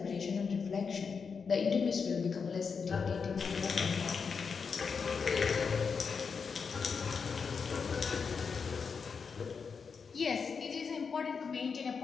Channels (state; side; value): quieter; right; 5.7 dB